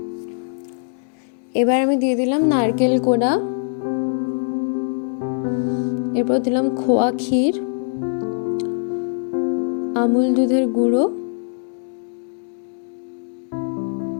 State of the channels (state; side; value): silent; right; 64 dB below the other